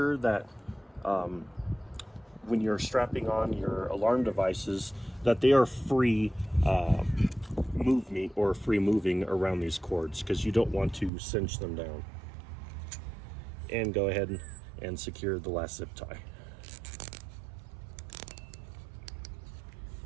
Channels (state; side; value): drops out; left; at 11.1 s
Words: that when you're strapping on your alarm devices, that they are free moving around these cords, because you don't want to cinch them down. And go ahead and secure the last zip tie.